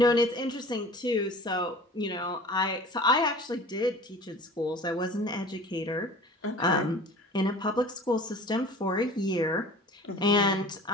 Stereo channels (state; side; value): normal; both; correlation 0.42